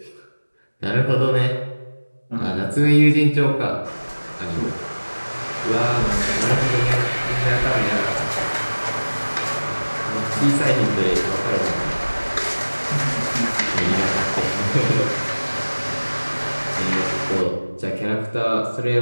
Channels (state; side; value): inverted; both; correlation -1.00